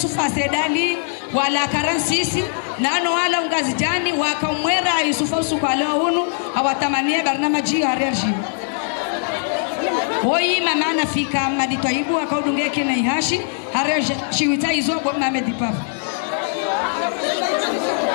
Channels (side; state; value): right; silent; digital silence